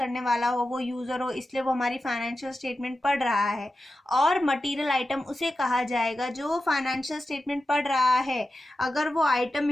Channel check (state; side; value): normal; both; correlation 0.92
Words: वाला हो वो यूजर हो, इसलिए वो हमारी फाइनेंशियल स्टेटमेंट पढ़ रहा है। और मटेरियल आइटम उसे कहा जाएगा जो फाइनेंशियल स्टेटमेंट पढ़ रहा है। अगर वो आइटम